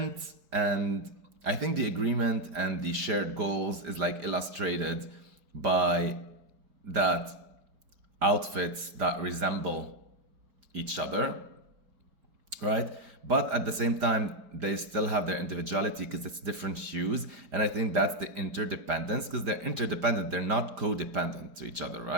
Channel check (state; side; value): late; left; 5.1 ms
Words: and I think the agreement and the shared goals is like illustrated by that outfits that resemble each other, right? But at the same time, they still have their individuality because it's different hues. And I think that's the interdependence, because they're interdependent. They're not codependent to each other,